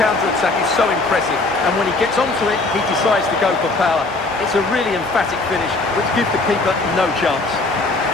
counter-attack is so impressive, and when he gets onto it, he decides to go for power. It's a really emphatic finish, which gives the keeper no chance.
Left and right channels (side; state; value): right; quieter; 3.2 dB